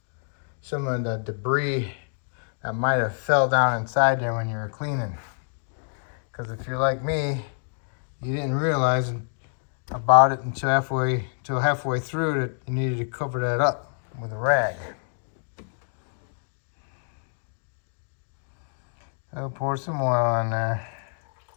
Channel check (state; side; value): silent; right; digital silence